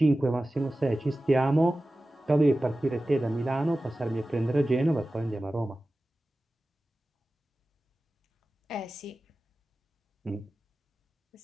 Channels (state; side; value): normal; both; correlation 0.95